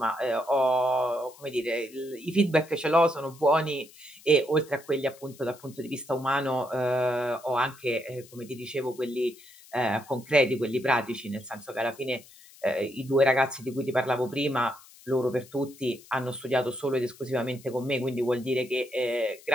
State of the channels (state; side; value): noise; left; hiss, 23 dB below the sound